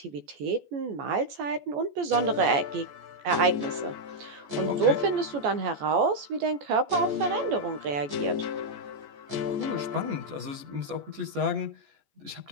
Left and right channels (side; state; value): left; late; 14 ms